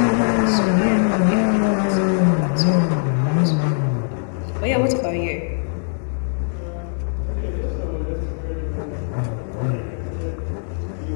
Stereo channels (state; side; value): silent; right; 65 dB below the other